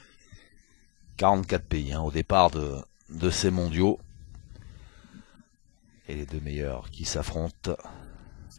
44 pays hein, au départ de ces mondiaux. Et les deux meilleurs qui s'affrontent.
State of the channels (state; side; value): quieter; right; 33.0 dB